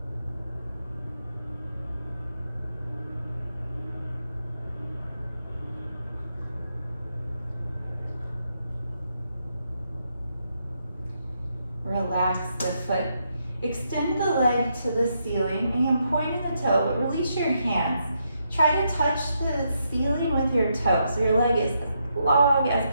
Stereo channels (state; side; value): inverted; both; correlation -0.80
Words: Relax the foot. Extend the leg to the ceiling and point in the toe, but release your hands. Try to touch the ceiling with your toe so your leg is as long as